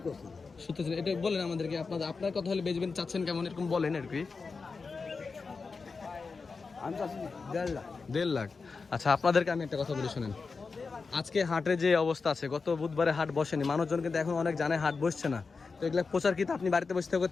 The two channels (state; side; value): quieter; right; 4.6 dB